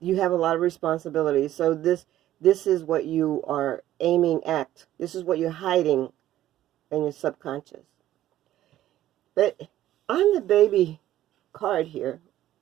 have a lot of responsibilities. So this is what you are aiming at. This is what you're hiding in your subconscious. But on the baby card here,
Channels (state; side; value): quieter; left; 13.4 dB